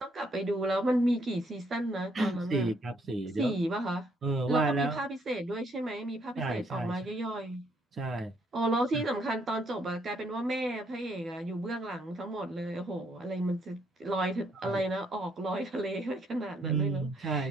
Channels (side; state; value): both; normal; correlation 0.71